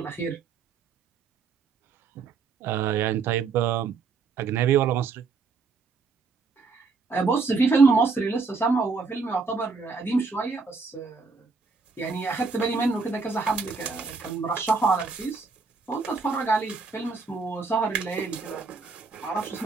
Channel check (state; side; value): quieter; left; 4.6 dB